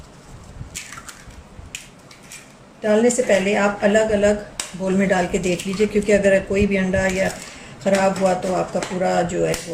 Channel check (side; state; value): both; identical; correlation 1.00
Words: डालने से पहले आप अलग अलग बोल में डाल के देख लीजिए, क्योंकि अगर कोई भी अंडा या ख़राब हुआ तो आपका पूरा जो है